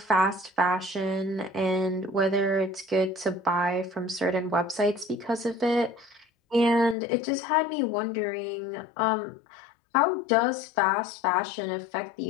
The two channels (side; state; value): right; drops out; at 7.0 s